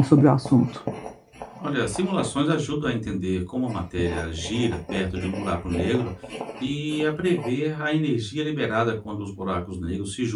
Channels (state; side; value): identical; both; correlation 1.00